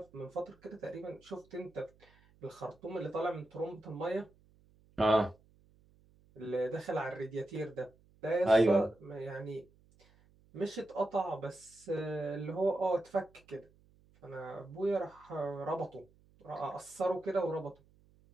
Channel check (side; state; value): right; noise; hum, 29 dB below the sound